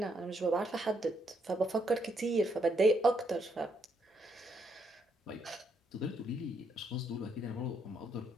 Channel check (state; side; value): normal; both; correlation 0.75